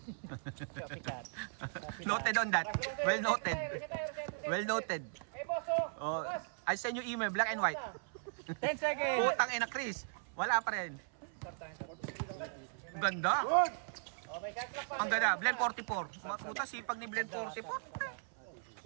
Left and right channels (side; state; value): left; silent; 53 dB below the other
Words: Noted on that. Well noted. Well noted. Oh, I send you email, black and white. 10 seconds! Putang ina, Chris. Wala pa rin. Ganda. Ang ganda. Blend 44. Mga puta, sipag ni Blend